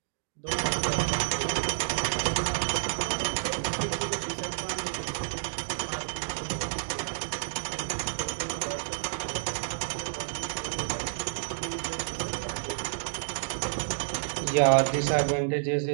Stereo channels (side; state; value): left; silent; digital silence